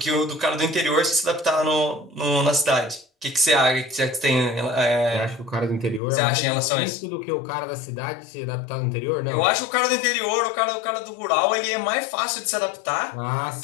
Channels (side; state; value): right; drops out; at 6.0 s